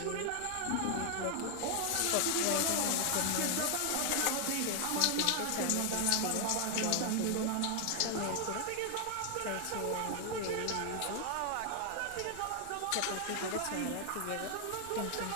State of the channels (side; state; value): both; different; correlation 0.00